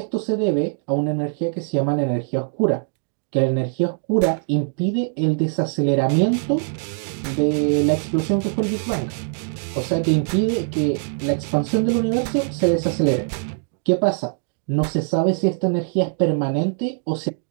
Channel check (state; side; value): silent; left; digital silence